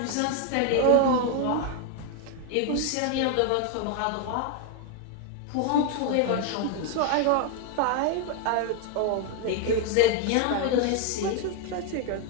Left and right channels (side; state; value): both; different; correlation 0.00